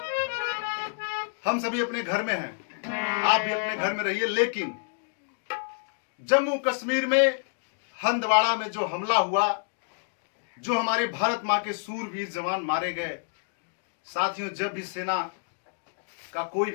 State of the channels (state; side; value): silent; right; digital silence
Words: हम सभी अपने घर में हैं, आप भी अपने घर में रहिए, लेकिन जम्मू कश्मीर में हंदवाड़ा में जो हमला हुआ, जो हमारे भारत मां के सूरवीर जवान मारे गए, साथियों जब भी सेना का कोई